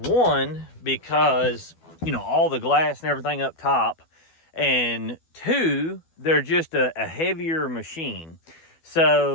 because, all the glass and everything up top. And two, they're just a heavier machine.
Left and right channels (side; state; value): right; late; 12 ms